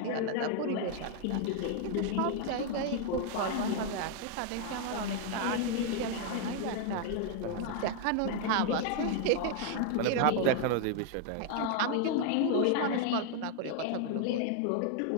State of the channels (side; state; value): both; different; correlation 0.00